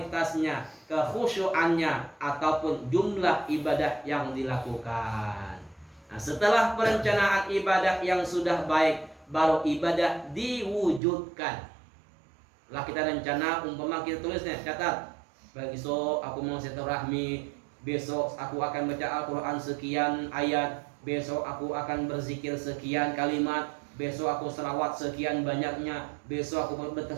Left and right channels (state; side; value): drops out; left; at 11.0 s